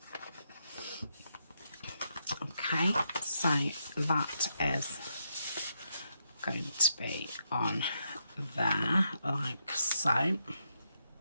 Okay, so that is going to be on there, like so.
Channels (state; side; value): inverted; both; correlation -0.81